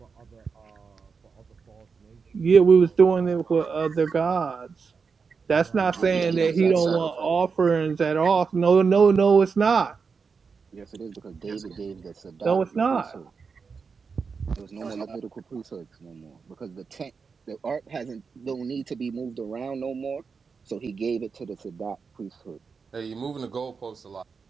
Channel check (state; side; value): quieter; left; 5.3 dB